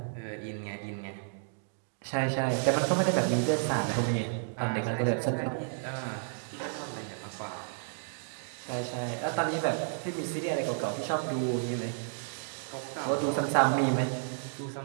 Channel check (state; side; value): silent; left; digital silence